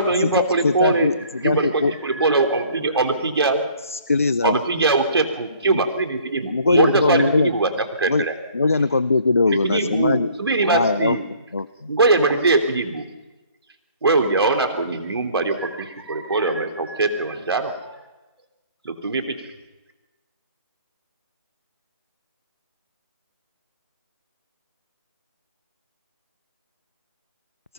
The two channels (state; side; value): inverted; both; correlation -0.56